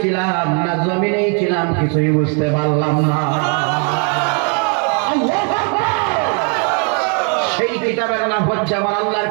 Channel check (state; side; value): quieter; left; 39.3 dB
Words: ছিলাম না জমিনেই ছিলাম কিছুই বুঝতে পারলাম না। সেই কিতাবের নাম হচ্ছে আমার আল্লাহর